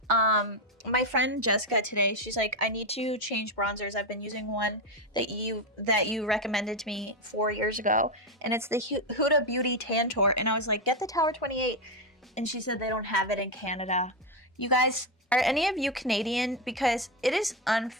My friend Jessica today, she's like, I need to change bronzers. I've been using one that you recommended to me 4 years ago, and it's the Huda Beauty Tantour. And I was like, get the Tower 28. And she said they don't have it in Canada. You guys, are any of you Canadian? Because it is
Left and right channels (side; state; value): both; normal; correlation 0.09